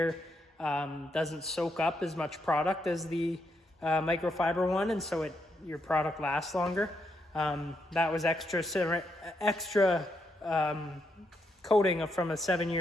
doesn't soak up as much product as the microfiber one, and so your product lasts longer. That was extra coating from a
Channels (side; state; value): both; normal; correlation 0.79